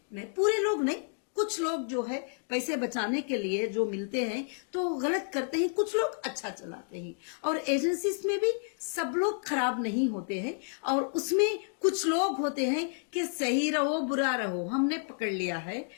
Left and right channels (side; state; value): right; silent; 57 dB below the other